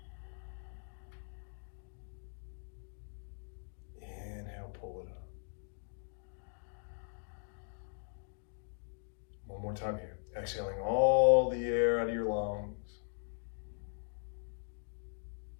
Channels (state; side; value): silent; right; digital silence